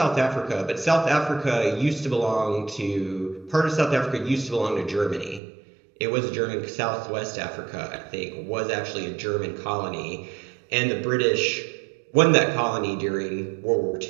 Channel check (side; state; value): left; drops out; at 5.4 s